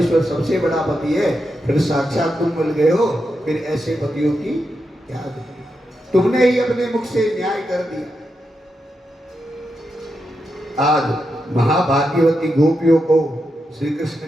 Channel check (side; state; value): both; normal; correlation 0.86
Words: सबसे बड़ा पति है, फिर साक्षात तुम मिल गए हो, फिर ऐसे पतियों की क्या गति? तुमने ही अपने मुख से न्याय कर दिया। आज महाभाग्यवती गोपियों को श्री कृष्ण